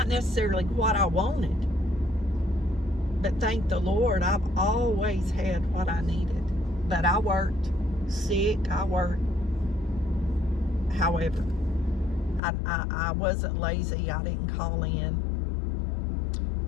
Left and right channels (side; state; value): right; drops out; at 12.4 s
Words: necessarily what I wanted. But thank the Lord, I've always had what I needed. But I worked sick, however, I wasn't lazy, I didn't call in.